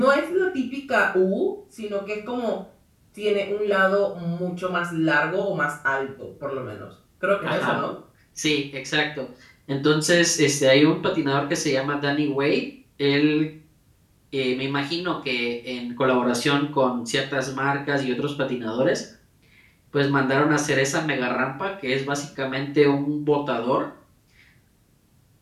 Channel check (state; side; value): identical; both; correlation 1.00